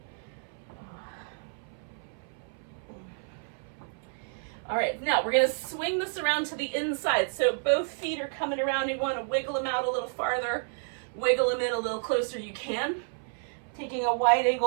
All right, now we're gonna swing this around to the inside. So both feet are coming around. You wanna wiggle them out a little farther, wiggle them in a little closer you can. Taking a wide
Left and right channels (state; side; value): silent; left; 58 dB below the other